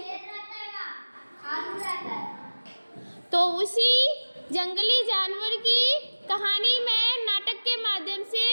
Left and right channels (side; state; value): both; inverted; correlation -1.00